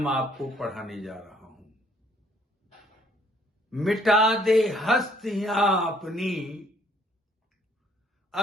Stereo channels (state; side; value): normal; both; correlation 0.64